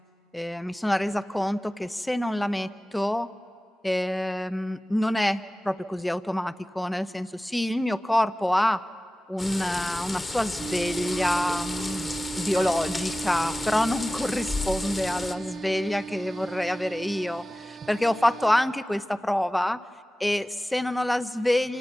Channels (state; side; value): normal; both; correlation 0.97